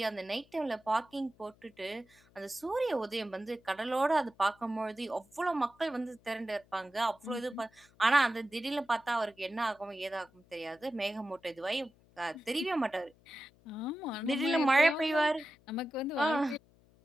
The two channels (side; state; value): left; noise; hum, 30 dB below the sound